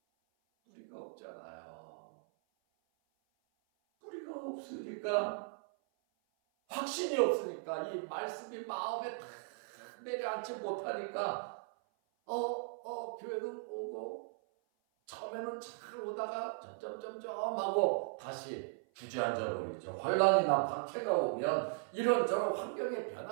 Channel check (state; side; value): silent; left; 52 dB below the other